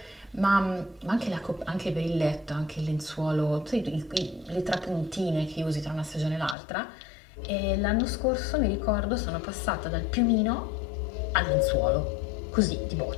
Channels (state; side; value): drops out; right; at 6.6 s